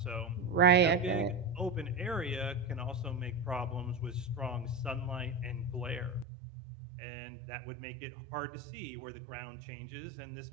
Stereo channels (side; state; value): left; drops out; at 6.2 s